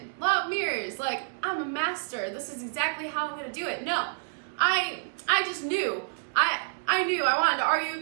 law of mirrors, like I'm a master. This is exactly how I'm going to do it. No, I just knew. I knew I wanted to argue with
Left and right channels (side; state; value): left; silent; digital silence